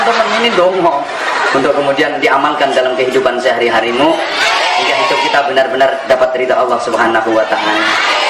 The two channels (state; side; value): identical; both; correlation 1.00